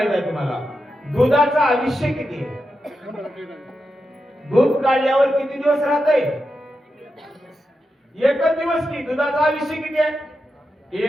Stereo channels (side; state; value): both; normal; correlation 0.88